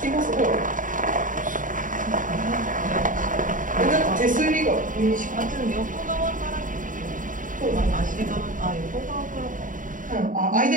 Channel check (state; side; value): late; left; 0.38 ms